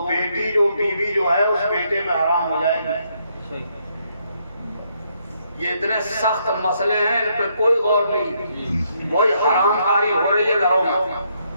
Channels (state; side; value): inverted; both; correlation -0.74